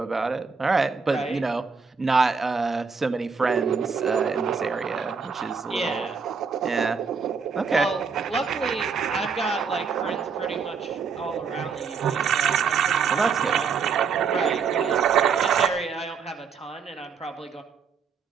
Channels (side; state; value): left; quieter; 5.7 dB